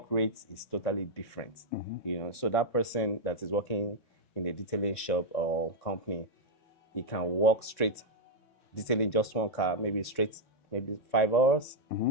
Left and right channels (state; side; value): late; right; 3.6 ms